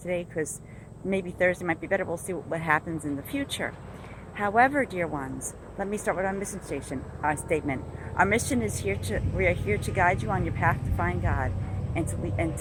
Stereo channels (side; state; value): both; identical; correlation 1.00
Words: because maybe Thursday might be better. We'll see what happens in the future. However, dear ones, let me start with our mission statement. Our mission is we are here to guide you on your path to find God, and to